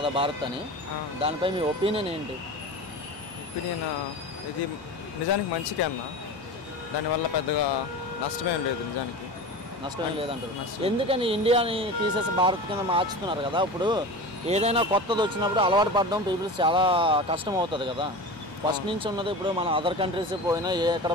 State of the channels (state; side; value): normal; both; correlation 0.30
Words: భారత్ అని, దానిపై మీ ఒపీనియన్ ఏంటి? ఒపీనియన్ ఇది నిజానికి మంచికే అన్న, దానివల్ల పెద్దగా నష్టమేం లేదు. నిజానికి నష్టం లేదంటారు. ఎందుకని ఇండియాని తీసేసి భారత్ కింద మార్చుతున్నారు కదా? ఇప్పుడు ఏదైనా కొత్తది వచ్చినప్పుడు అలవాటు పడడం పీపుల్స్ చాలా కష్టం అవుతుంది కదా. ఫస్ట్ నుంచి ఉన్నది ఇప్పుడు మన అదర్ కంట్రీస్ పోయినా ఎక్కడ